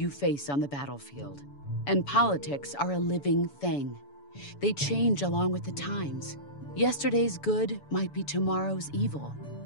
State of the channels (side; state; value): right; late; 7.0 ms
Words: face on the battlefield. And politics are a living thing. They change along with the times. Yesterday's good might be tomorrow's evil.